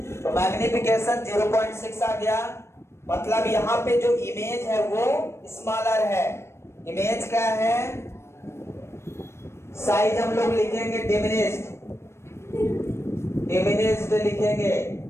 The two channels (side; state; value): right; late; 0.13 ms